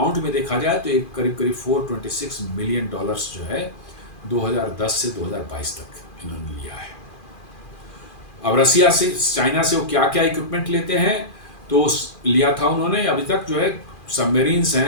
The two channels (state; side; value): late; right; 2.4 ms